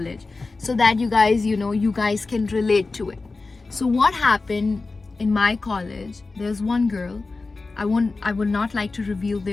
so that you guys, you guys can relate to it. So what happened in my college, there's one girl, I would not like to reveal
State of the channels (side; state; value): right; quieter; 3.7 dB